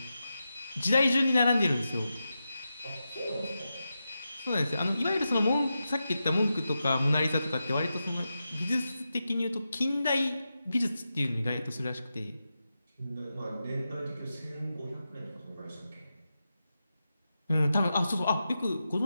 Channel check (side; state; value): both; inverted; correlation -0.90